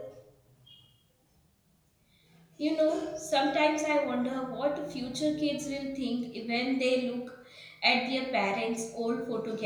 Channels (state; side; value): identical; both; correlation 1.00